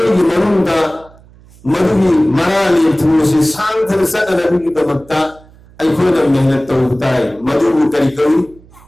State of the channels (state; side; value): noise; right; hum, 26 dB below the sound